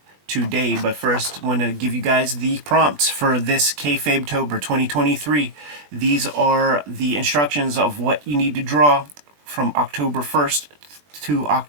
today, but first I want to give you guys the prompts for this Kayfabe-tober 2023. These are the instructions of what you need to draw from October 1st to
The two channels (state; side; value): late; left; 20 ms